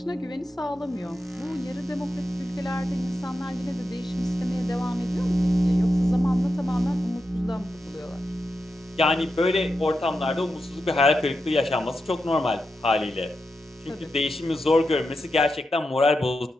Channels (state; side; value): normal; both; correlation 0.88